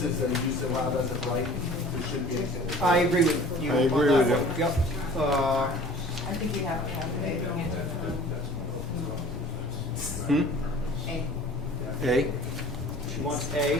is a use allowed as of right, there shouldn't be anything. I agree with you. I agree on with that you. one. Yep. I think you have to have A. A? She wants A.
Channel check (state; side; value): normal; both; correlation 0.46